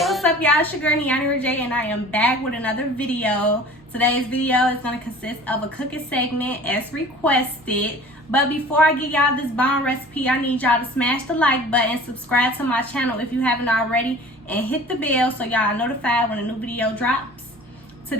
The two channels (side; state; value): both; normal; correlation 0.44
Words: up, y'all? It's your girl Niani Rajay, and I am back with another video. Today's video is going to consist of a cooking segment as requested. But before I give y'all this bomb recipe, I need y'all to smash the like button, subscribe to my channel if you haven't already, and hit the bell so y'all are notified when a new video drops.